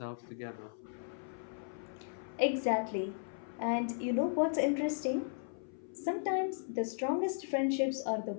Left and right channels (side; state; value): right; silent; 54 dB below the other